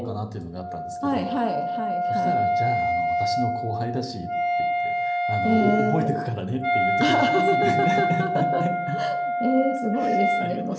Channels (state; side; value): identical; both; correlation 1.00